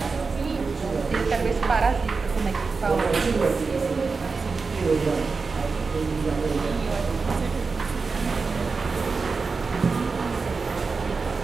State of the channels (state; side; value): quieter; left; 4.5 dB